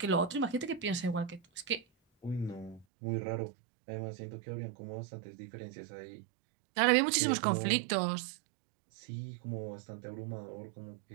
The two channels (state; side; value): drops out; left; at 2.9 s